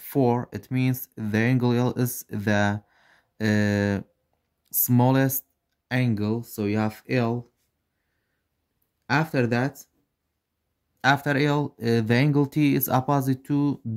4. It means the angle L is the smallest angle. So you have L. After that, after L, the angle T is opposite to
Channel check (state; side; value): identical; both; correlation 1.00